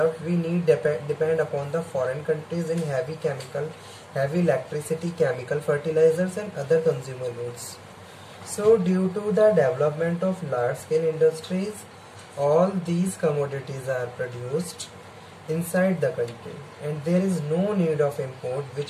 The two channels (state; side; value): identical; both; correlation 1.00